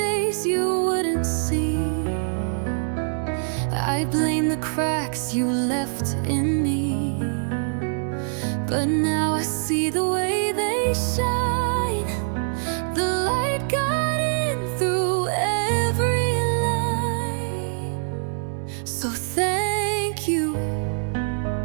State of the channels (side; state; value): left; silent; 63 dB below the other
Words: you wouldn't see. I blamed the cracks you left in me. But now I see the way they shine. The light got in through every line. So thank you